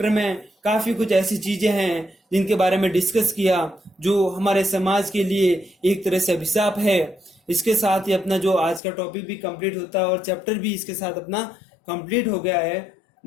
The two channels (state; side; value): drops out; right; at 8.8 s